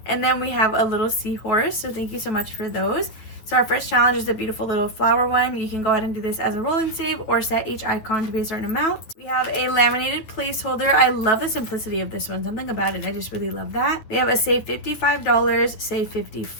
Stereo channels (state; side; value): late; right; 9.6 ms